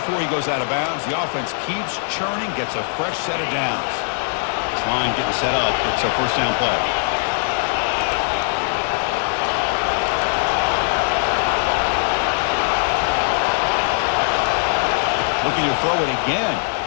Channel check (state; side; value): silent; right; digital silence